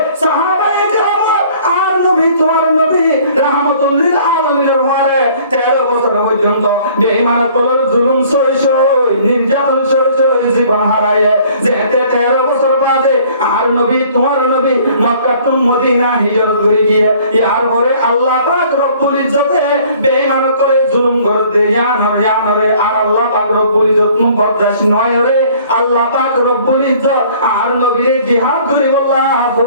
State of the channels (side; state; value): both; inverted; correlation -0.55